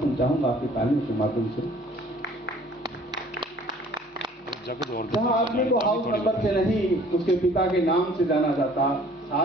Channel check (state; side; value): normal; both; correlation 0.54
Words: चाहूंगा आपकी तालियों के माध्यम से। जहाँ आदमी को हाउस नंबर से नहीं, उसके पिता के नाम से जाना जाता,